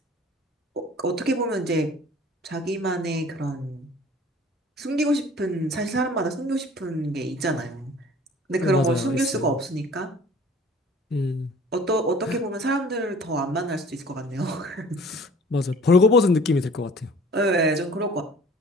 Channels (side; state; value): both; normal; correlation 0.49